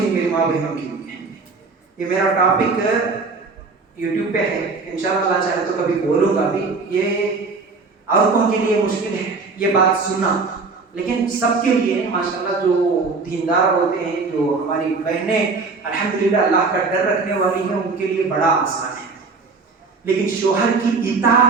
میری ماں بہنوں کے لیے. یہ میرا ٹاپک یوٹیوب پہ ہے, انشاءاللہ اللہ چاہے تو کبھی بولوں گا بھی. یہ عورتوں کے لیے مشکل ہے یہ بات سننا, لیکن سب کے لیے ماشاءاللہ جو دیندار ہوتے ہیں, جو ہماری بہنیں الحمدللہ اللہ کا ڈر رکھنے والی ہیں, ان کے لیے بڑا آسان ہے. لیکن شوہر کی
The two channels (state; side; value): quieter; left; 4.2 dB